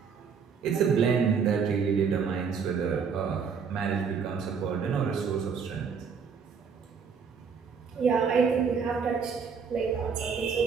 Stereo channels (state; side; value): quieter; left; 6.1 dB